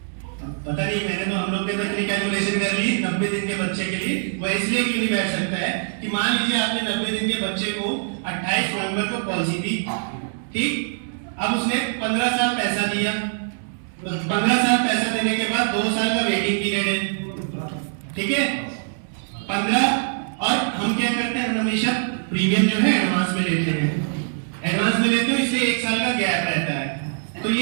पता नहीं, मैंने तो हम लोग ने इतनी कैलकुलेशन कर ली 90 दिन के बच्चे के लिए। वो इसलिए क्यों नहीं बैठ सकता है कि मान लीजिए आपने 90 दिन के बच्चे को 28 नवंबर को पॉलिसी दी, ठीक, अब उसने 15 साल पैसा दिया, 15 साल पैसा देने के बाद 2 साल का वेटिंग पीरियड है, ठीक है 15। और हम क्या करते हैं, हमेशा प्रीमियम जो है एडवांस में लेते हैं, एडवांस में लेते हो इसलिए 1 साल का गैप रहता है। तो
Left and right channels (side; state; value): left; silent; digital silence